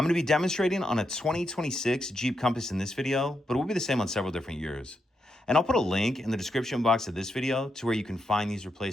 going to be demonstrating on a 2026 Jeep Compass in this video, but it will be the same on several different years. And I'll put a link in the description box of this video to where you can find these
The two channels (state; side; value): normal; both; correlation 0.83